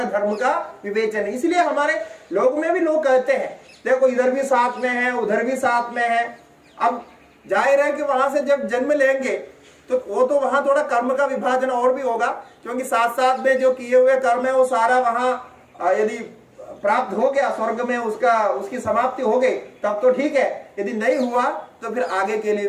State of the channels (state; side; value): identical; both; correlation 1.00